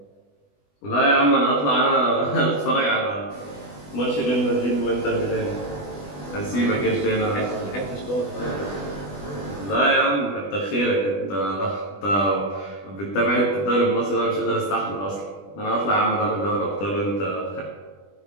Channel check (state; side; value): late; right; 20 ms